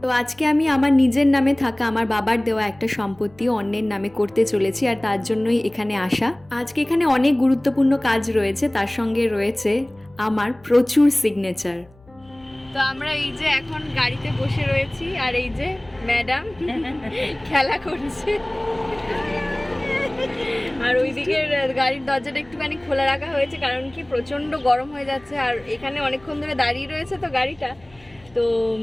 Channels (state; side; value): noise; left; hum, 28 dB below the sound